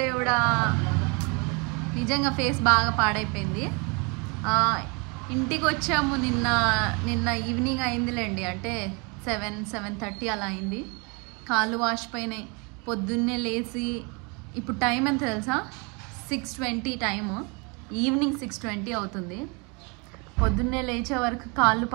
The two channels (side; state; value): left; quieter; 31.3 dB